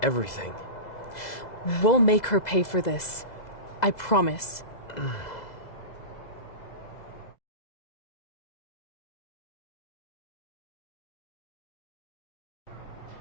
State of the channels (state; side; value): late; right; 2.0 ms